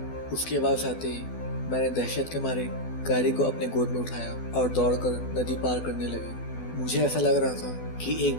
उसकी आवाज आते ही मैंने दहशत के मारे कायरी को अपने गोद में उठाया और दौड़कर नदी पार करने लगे। मुझे ऐसा लग रहा था कि एक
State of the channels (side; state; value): right; late; 12 ms